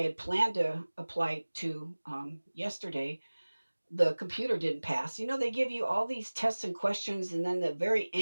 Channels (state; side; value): inverted; both; correlation -1.00